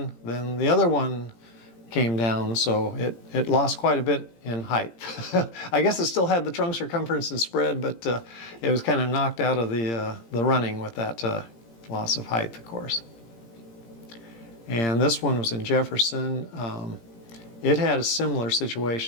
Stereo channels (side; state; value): right; late; 17 ms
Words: then the other one came down, so it lost quite a bit in height. I guess it still had the trunk circumference and spread, but it was kind of knocked out of the running with that loss of height, of course. And this one was in Jefferson. It had a similar